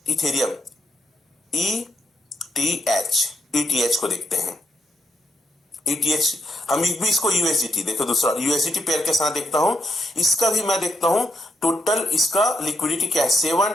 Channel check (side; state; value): both; normal; correlation 0.80